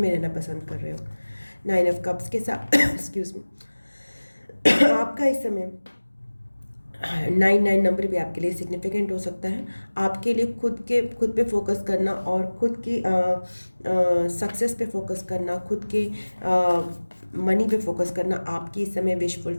रहना पसंद कर रहे हो। 9 ऑफ कप्स के साथ एक्सक्यूज़ मी, आपका इस समय 99 नंबर भी आपके लिए सिग्निफिकेंट हो सकता है। आपके लिए खुद पे फोकस करना और खुद की सक्सेस पे फोकस करना, खुद के मनी पे फोकस करना आपकी इस समय विश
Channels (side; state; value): both; inverted; correlation -1.00